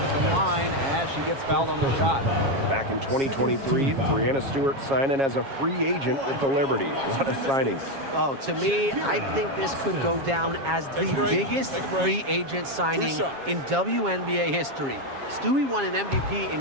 the line as she gets fouled on the shot. Back in 2023, Breanna Stewart signing as a free agent with the Liberty. What a signing. Oh, to me, I think this could go down as the biggest free agent signing in WNBA history. Stewie won an MVP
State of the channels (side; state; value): left; late; 7.3 ms